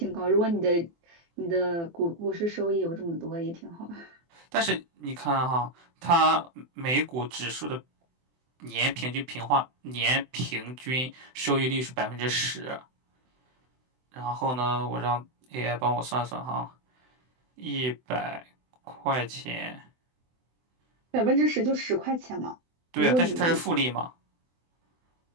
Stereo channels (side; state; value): left; late; 24 ms